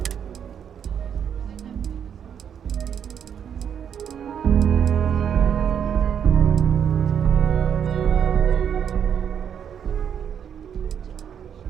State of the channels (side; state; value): left; quieter; 8.3 dB